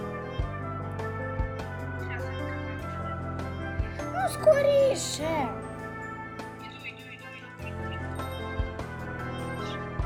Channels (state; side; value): identical; both; correlation 1.00